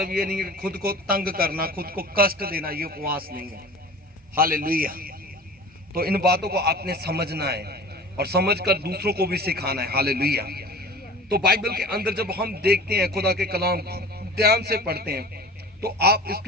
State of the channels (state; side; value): normal; both; correlation 0.40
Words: ये नहीं है कि खुद को तंग करना, खुद को कष्ट देना, ये उपवास नहीं है। हालेलुया। तो इन बातों को आपने समझना है और समझकर दूसरों को भी सिखाना है। हालेलुया। तो बाइबल के अंदर जब हम देखते हैं, खुदा के कलाम ध्यान से पढ़ते हैं, तो आप